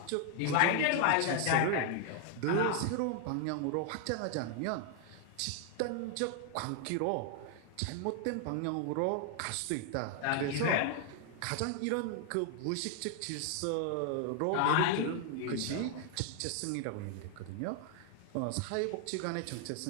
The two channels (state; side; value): different; both; correlation 0.00